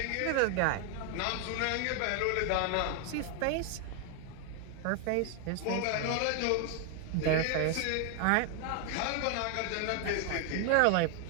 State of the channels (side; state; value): both; different; correlation 0.01